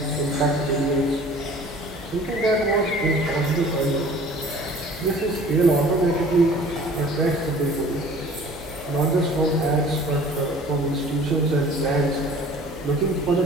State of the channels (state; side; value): normal; both; correlation 0.48